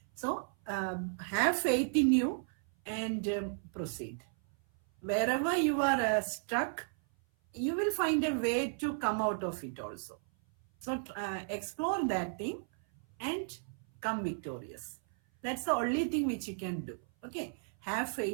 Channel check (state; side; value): silent; left; 55 dB below the other